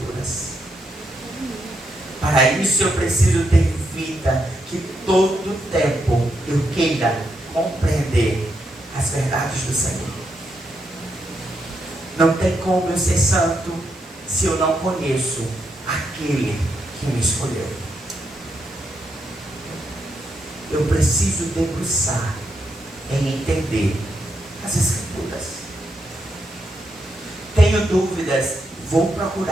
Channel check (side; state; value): both; normal; correlation 0.81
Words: Para isso eu preciso ter vida que todo tempo eu queira compreender as verdades do Senhor. Não tem como eu ser santo se eu não conheço aquele que me escolheu. Eu preciso debruçar em entender as Escrituras. Tenho dúvidas, vou